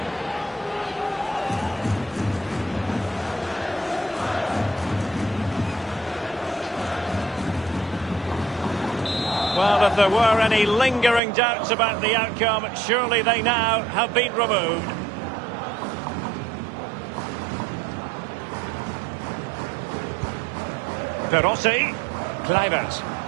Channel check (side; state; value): left; drops out; at 11.2 s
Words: Well, if there were any lingering doubts about the outcome, surely they now have been removed. Perossi, Kluivert,